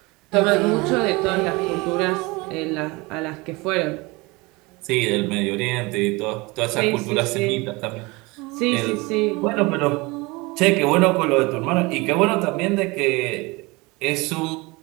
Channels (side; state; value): left; quieter; 24.5 dB